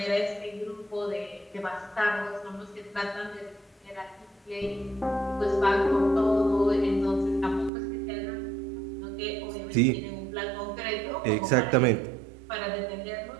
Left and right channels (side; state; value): left; drops out; at 7.7 s